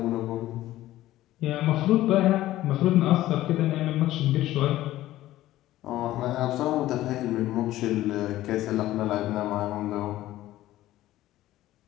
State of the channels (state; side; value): quieter; right; 15.0 dB